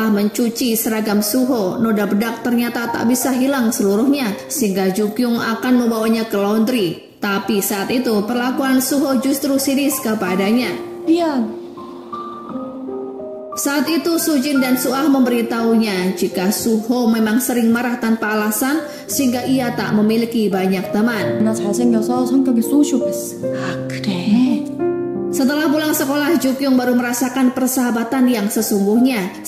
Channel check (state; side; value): identical; both; correlation 1.00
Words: mencuci seragam Suho, noda bedak ternyata tak bisa hilang seluruhnya sehingga Jukyung akan membawanya ke laundry. Tapi saat itu perlakuan Suho justru sinis kepadanya. 미안. Saat itu Sujin dan Suah memberitahunya jika Suho memang sering marah tanpa alasan sehingga ia tak memiliki banyak teman. 나 잘생겨서 성격이 소시오패스. 아, 그래? Setelah pulang sekolah, Jukyung baru merasakan persahabatan yang sesungguhnya